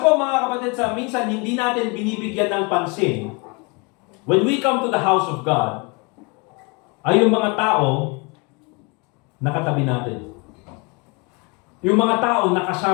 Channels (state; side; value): quieter; right; 29.6 dB